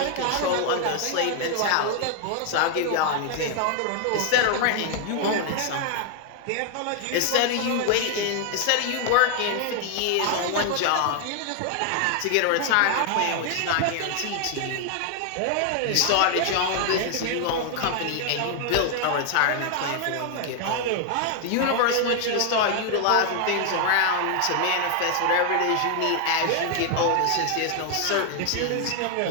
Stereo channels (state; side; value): different; both; correlation 0.00